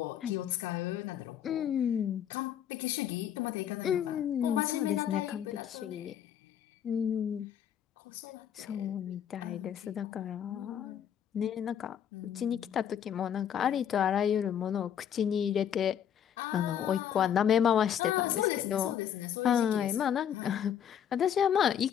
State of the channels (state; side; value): quieter; right; 9.2 dB